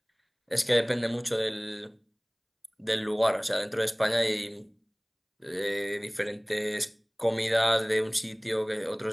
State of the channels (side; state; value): both; identical; correlation 1.00